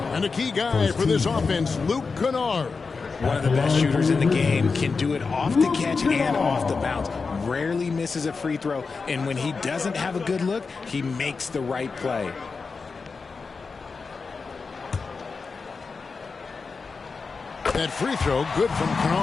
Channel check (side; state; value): right; quieter; 4.7 dB